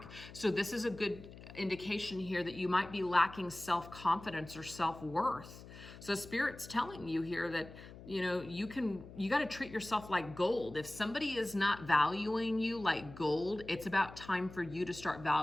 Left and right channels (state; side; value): noise; left; hum, 16 dB below the sound